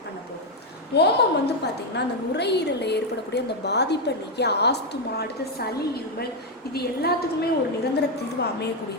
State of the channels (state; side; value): normal; both; correlation 0.04